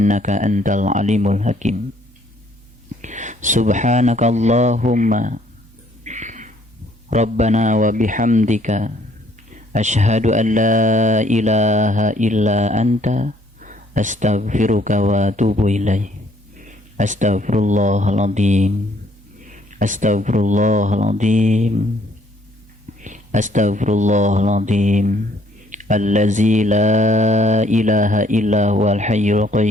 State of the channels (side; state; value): both; normal; correlation 0.64